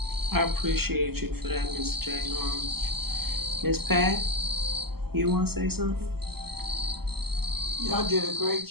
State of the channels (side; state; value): left; late; 0.96 ms